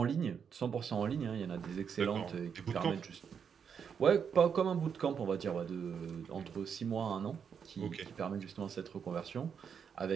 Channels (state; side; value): quieter; left; 7.0 dB